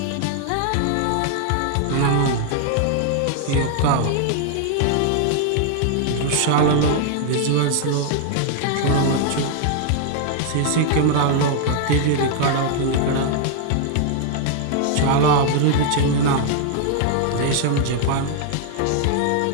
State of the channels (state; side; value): different; both; correlation 0.00